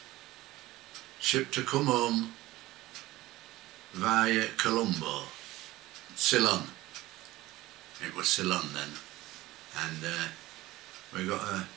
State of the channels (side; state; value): left; quieter; 17.8 dB